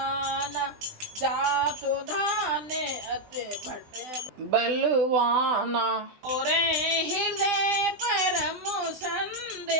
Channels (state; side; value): late; left; 20 ms